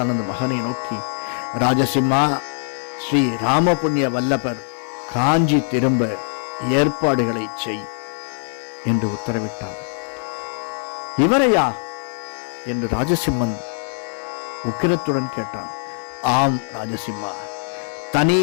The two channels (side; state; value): right; silent; 58 dB below the other